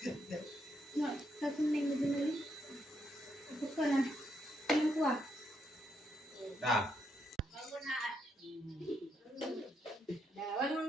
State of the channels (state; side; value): normal; both; correlation 0.78